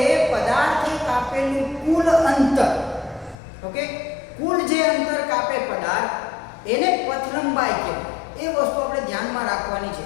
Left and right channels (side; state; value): right; drops out; at 3.4 s